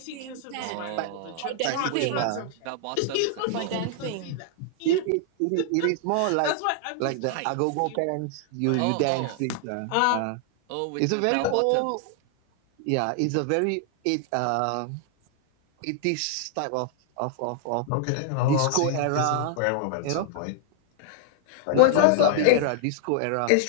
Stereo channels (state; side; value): different; both; correlation -0.01